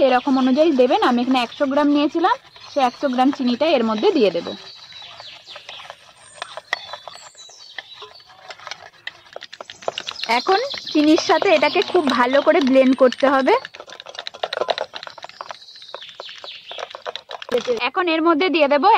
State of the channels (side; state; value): both; identical; correlation 1.00